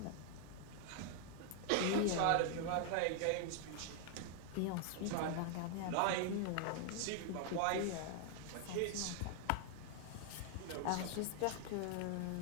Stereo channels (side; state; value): both; different; correlation 0.00